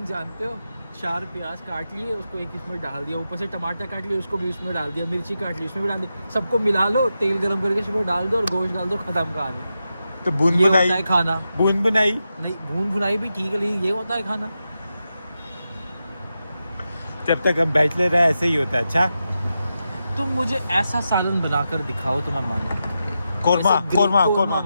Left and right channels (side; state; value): both; inverted; correlation -0.88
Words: जानते हो? 4 प्याज काट लिए, उसको एक इसमें डाल दिया, ऊपर से टमाटर काट लिए, उसको भी उसमें डाल दिया, मिर्ची काट ली, उसमें भी डाल दी, सबको मिला लो, तेल गरम करके उसमें डाल दो और गोश्त डाल दो, खत्म कहानी। तो बूंद ये बुनाई, होता है खाना। बूंद बुनाई नहीं, भून भुनाई भी ठीक है, लेकिन ये होता है खाना। जब तक हम बैचलर है ऐसे ही होता है। अच्छा तुम मुझे ऐसा सालन बनाकर दिखाओ तो मैं मानूं। कोरमा, ऐसे कोरमा, कोरमा कोरमा